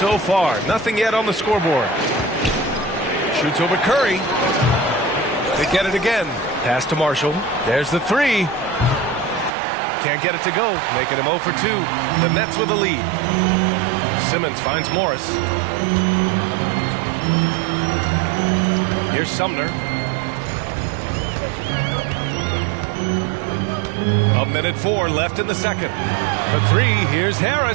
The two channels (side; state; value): left; drops out; at 9.5 s